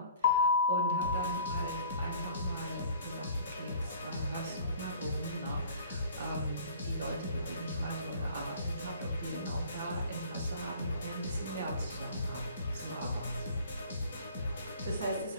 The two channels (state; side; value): inverted; both; correlation -0.49